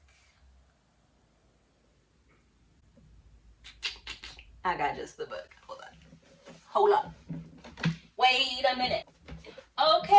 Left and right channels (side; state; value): both; identical; correlation 1.00